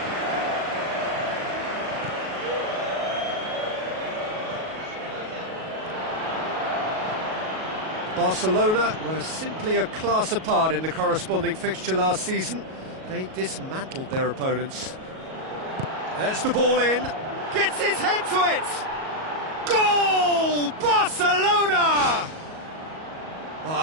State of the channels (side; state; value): left; late; 37 ms